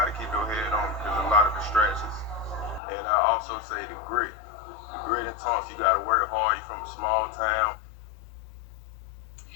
to keep your head on because there's a lot of distractions. And I also say the grit and tough. You got to work hard. You're from a small town.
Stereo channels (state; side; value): drops out; right; at 2.8 s